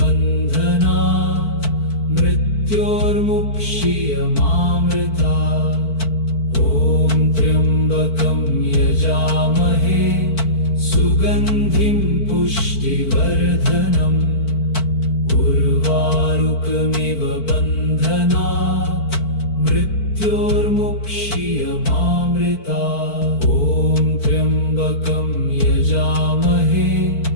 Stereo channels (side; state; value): right; late; 4.5 ms